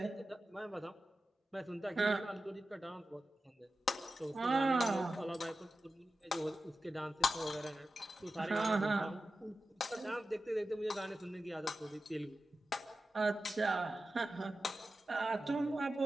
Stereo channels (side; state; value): both; normal; correlation 0.93